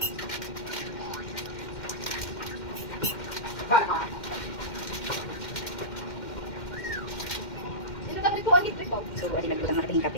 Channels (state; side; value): late; right; 2.1 ms